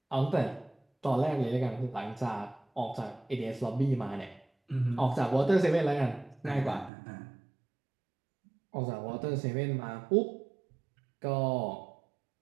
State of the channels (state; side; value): drops out; left; at 6.9 s